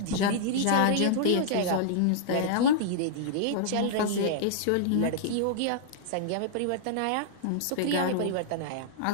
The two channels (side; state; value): both; different; correlation -0.02